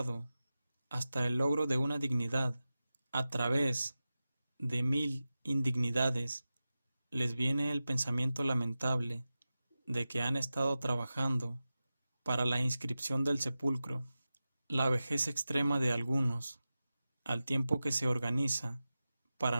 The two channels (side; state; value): both; inverted; correlation -0.94